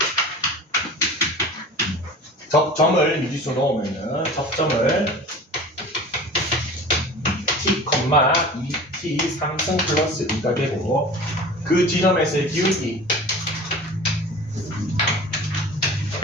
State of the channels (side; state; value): both; normal; correlation 0.39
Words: 점을 미지수 넣으면은 접점을 t, 2t 3승 플러스 2가 되고 그 지점에서의 기울기